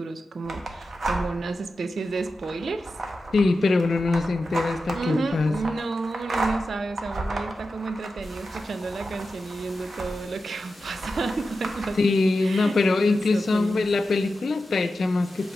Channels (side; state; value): both; normal; correlation 0.91